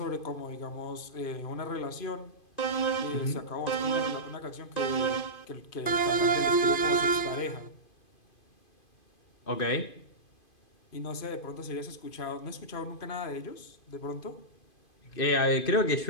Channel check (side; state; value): right; late; 2.5 ms